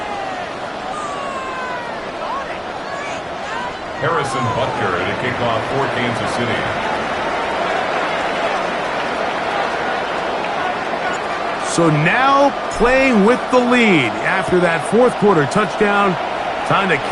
Harrison Butker to kick off for Kansas City. So now playing with the lead after that fourth quarter touchdown. Time to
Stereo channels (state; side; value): identical; both; correlation 1.00